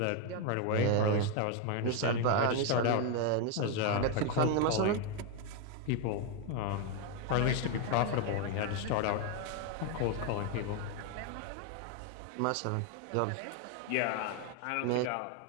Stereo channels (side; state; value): both; different; correlation 0.01